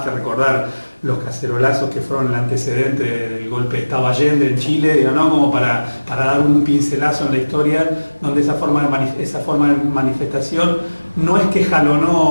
que recordar los cacerolazos que fueron el antecedente del golpe de Estado Allende en Chile, como para dar un pincelazo en la historia donde esa forma de manifestación no es que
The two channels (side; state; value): both; inverted; correlation -1.00